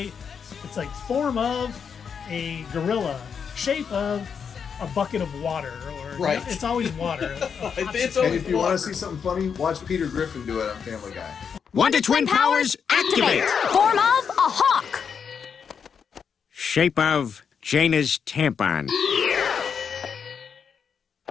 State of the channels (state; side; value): quieter; right; 6.7 dB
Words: It's like form of a gorilla, shape of a bucket of water, or Right. it's always water. It's And always if you want water. to see something funny, watch Peter Griffin do it on Family Guy. Wonder Twin powers activate! Form of a hawk. Shape of Jaina's tampon.